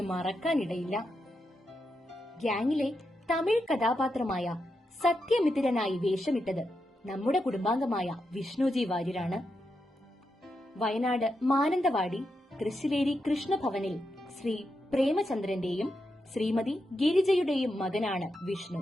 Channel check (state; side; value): normal; both; correlation 0.85